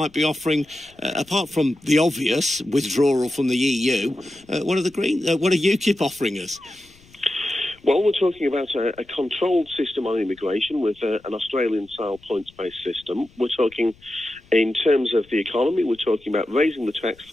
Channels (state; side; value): noise; left; rumble, 28 dB below the sound